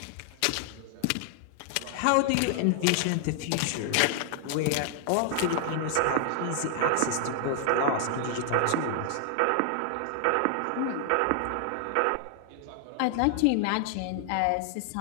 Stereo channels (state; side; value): different; both; correlation 0.00